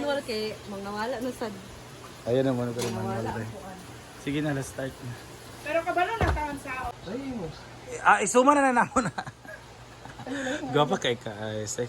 kay mga wala na sad. Ayun naman ko naman. Sige na, let's start na. Pero kabalo na taon sa Isuma na namo na. Gapa kay ka,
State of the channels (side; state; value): both; identical; correlation 1.00